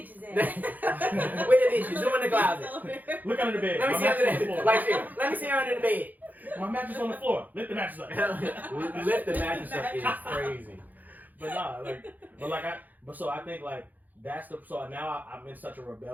at? Where the bitches? Who in the closet? Look under the bed. Let me My see under mattress on the the floor. like shit. Let me see her under the bed. My mattress on the floor. Lift the mattress up. Lift the mattress up is crazy. But nah, so I think like that's so now I'm in such a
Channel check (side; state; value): left; late; 0.083 ms